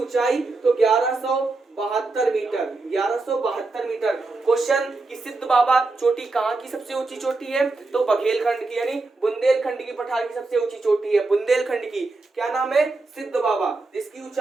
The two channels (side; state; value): left; quieter; 3.5 dB